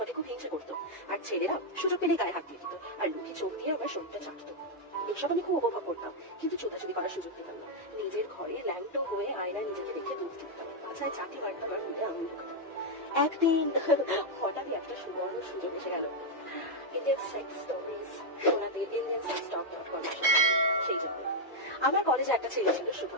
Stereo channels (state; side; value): normal; both; correlation -0.01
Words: খুব হিংসে করতো। আর ছেলেরা সুযোগ পেলে গায়ে হাত দিয়ে দিত আর লুকি চোখ দিয়ে আমার শরীরটা চাটতো। এসব আমি খুব উপভোগ করতাম, কিন্তু চোদাচুদি করার সুযোগ পেতাম না। নিজের ঘরে ল্যাংটো হয়ে আয়নায় নিজেকে দেখে দুধ দিতাম, পাছায় চাটি মারতাম আর মুখে আঙুল ঢুকাতাম। একদিন হঠাৎই একটা সুবর্ণ সুযোগ এসে গেল। ইন্ডিয়ান সেক্স স্টোরিজ শোনাতে indiansex.com সেই জন্য আমার কলেজে একটা ছেলে ছিল